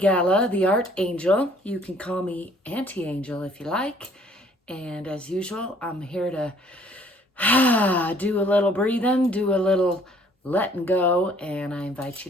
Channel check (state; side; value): normal; both; correlation 0.59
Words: the Art Angel. You can call me Auntie Angel if you like. And as usual, I'm here to do a little breathing, do a little letting go, and I invite you